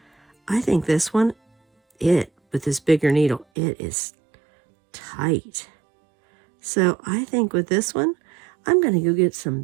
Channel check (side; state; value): left; drops out; at 3.5 s